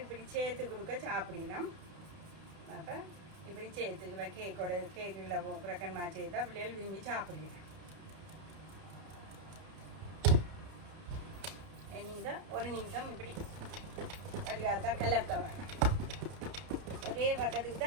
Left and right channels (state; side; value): late; left; 31 ms